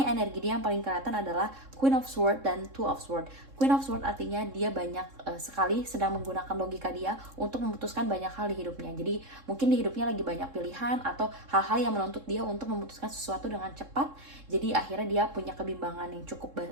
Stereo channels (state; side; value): late; left; 3.7 ms